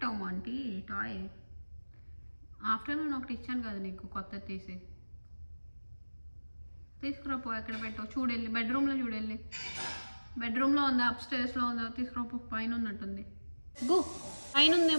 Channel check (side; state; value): both; inverted; correlation -1.00